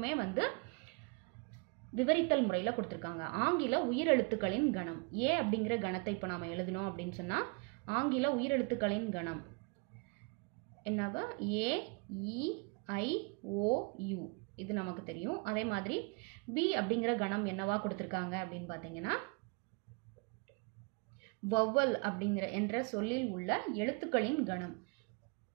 விவரித்தல் முறையில் கொடுத்திருக்காங்க. ஆங்கில உயிரெழுத்துக்களின் கணம் A அப்படிங்கிற கணத்தை இப்போ நாம எழுதணும் அப்படின்னு சொன்னா ஆங்கில உயிரெழுத்துக்களின் கணம் என்னவா AEIOU இது நமக்கு தெரியும். அதே மாதிரி B அப்படிங்கிற கணம் என்னவா கொடுத்திருக்காங்க அப்படின்னு பார்த்தீங்கன்னா வவ்வல் அப்படிங்கிற என்ற சொல்லில் உள்ள எழுத்துக்களின் கணம்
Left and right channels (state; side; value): quieter; left; 31.6 dB